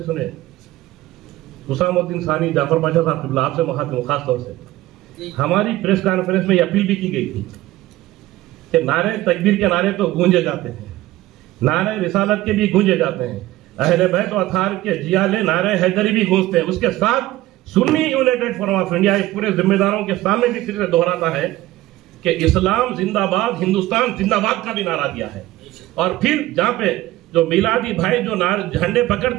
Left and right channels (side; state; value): left; quieter; 16.4 dB